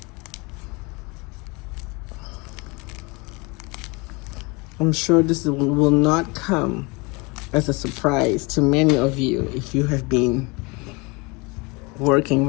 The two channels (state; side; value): quieter; right; 27.3 dB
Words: I'm sure this will not come as a surprise to many of you if you have been working